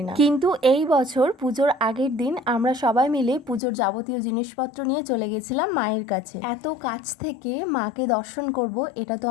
না। কিন্তু এই বছর পুজোর আগের দিন আমরা সবাই মিলে পুজোর যাবতীয় জিনিসপত্র নিয়ে চলে গেছিলাম মায়ের কাছে। এত কাছ থেকে মাকে দর্শন করব এটা তো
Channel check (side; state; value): right; drops out; at 3.6 s